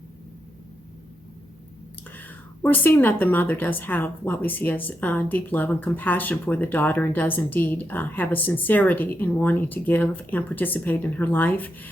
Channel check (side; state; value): both; normal; correlation 0.83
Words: We're seeing that the mother does have what we see as deep love and compassion for the daughter, and does indeed have a sincerity in wanting to give and participate in her life